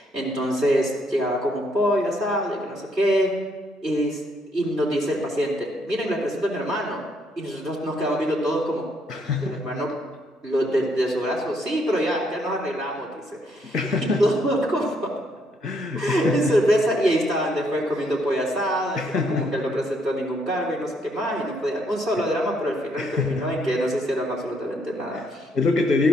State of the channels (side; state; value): both; normal; correlation 0.71